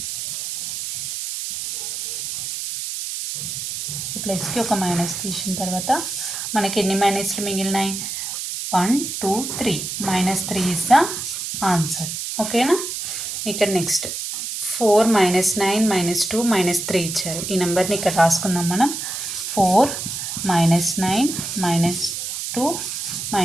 ప్లస్కి ఒక మైనస్ తీసిన తర్వాత మనకి ఎన్ని మైనస్లు మిగిలినాయి? 1 2 3. -3 ఇస్ ద ఆన్సర్. ఓకేనా. ఇక్కడ నెక్స్ట్ 4 - 9 - 2 - 3 ఇచ్చారు. ఈ నెంబర్ని ఇక్కడ రాసుకుందాం మనం. 4 - 9 - 2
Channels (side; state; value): right; noise; hiss, 5 dB below the sound